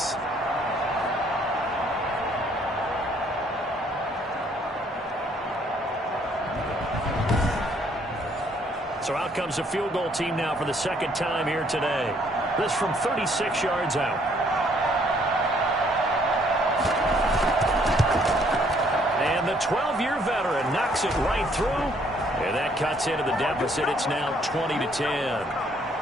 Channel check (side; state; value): both; normal; correlation 0.65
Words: So out comes a field goal team now for the 2nd time here today. This from 36 yards out. And the 12-year veteran knocks it right through. And that cuts into the deficit. It's now 20-10.